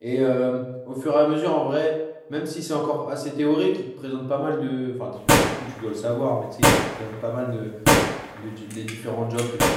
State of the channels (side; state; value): both; identical; correlation 1.00